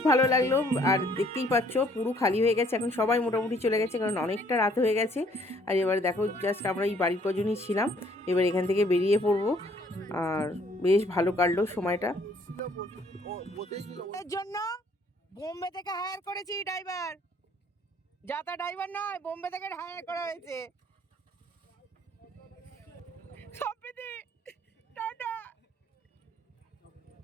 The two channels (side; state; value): both; normal; correlation 0.62